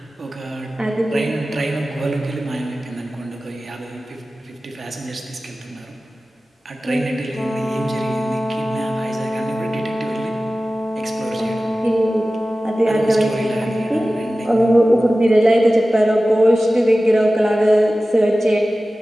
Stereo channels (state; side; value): normal; both; correlation 0.96